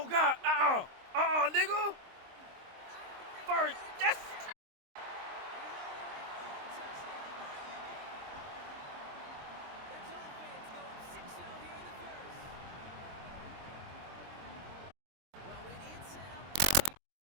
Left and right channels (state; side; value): late; left; 23 ms